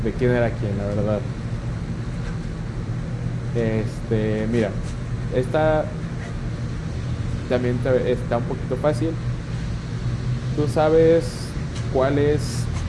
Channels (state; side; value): identical; both; correlation 1.00